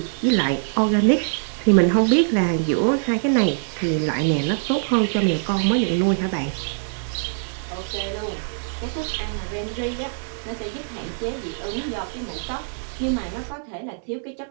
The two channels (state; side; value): silent; left; digital silence